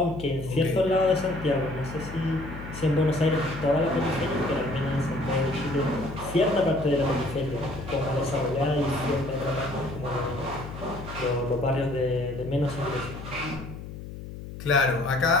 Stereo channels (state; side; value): noise; left; hum, 11 dB below the sound